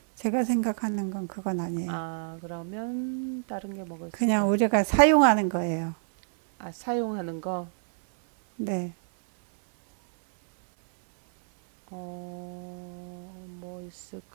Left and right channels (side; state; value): left; silent; 59 dB below the other